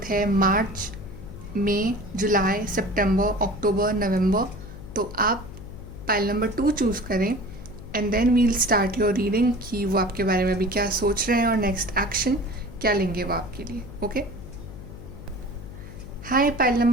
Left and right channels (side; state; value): left; noise; hum, 13 dB below the sound